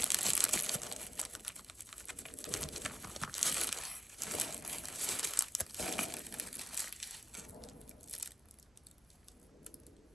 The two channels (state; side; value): normal; both; correlation 0.86